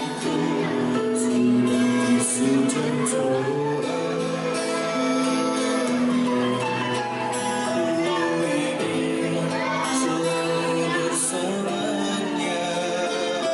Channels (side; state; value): both; identical; correlation 1.00